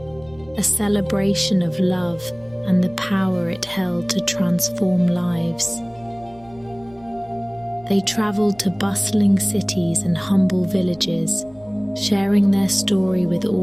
a celebration of love and the power it held to transform lives. They traveled to bustling cities and humble villages, sharing their story with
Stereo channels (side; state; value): left; noise; rumble, 26 dB below the sound